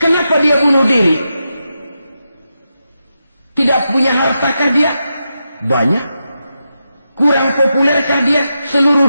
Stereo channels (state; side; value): inverted; both; correlation -0.87